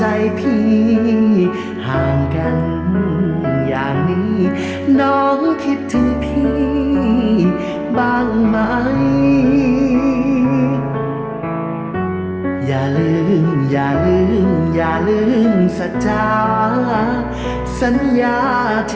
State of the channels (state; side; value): identical; both; correlation 1.00